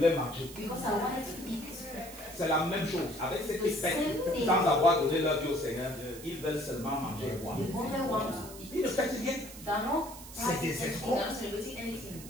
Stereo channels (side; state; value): right; noise; hiss, 15 dB below the sound